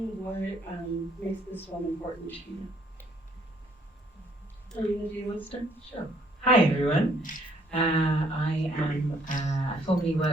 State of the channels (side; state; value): both; normal; correlation 0.65